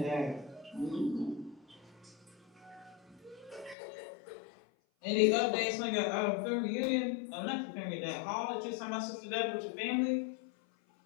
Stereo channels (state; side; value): drops out; right; at 3.8 s